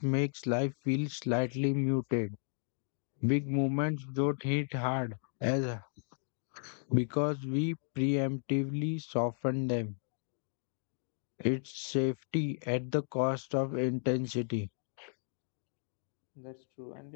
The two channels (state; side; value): silent; right; digital silence